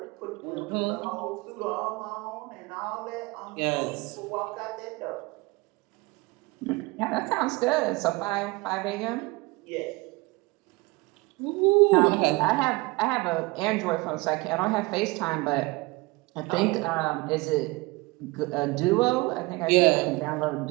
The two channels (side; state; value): left; quieter; 24.2 dB